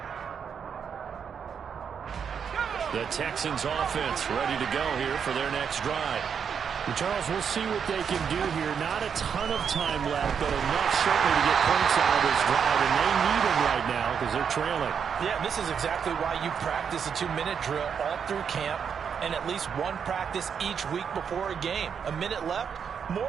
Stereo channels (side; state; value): left; quieter; 7.1 dB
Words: The Texans offense ready to go here for their next drive. Charles, we'll see what they can do here. Not a ton of time left, but enough certainly to get points out of this drive, and they need them right now because they're trailing. Yeah, this is exactly why you practice a 2-minute drill all through camp and at least one practice each week before a game. A minute left,